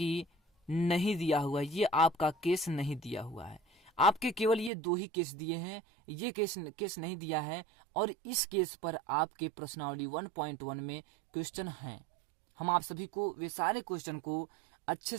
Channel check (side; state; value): left; drops out; at 4.7 s